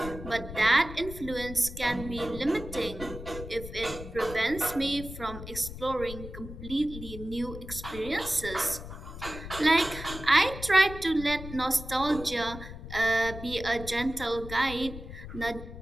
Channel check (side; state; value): left; noise; rumble, 11 dB below the sound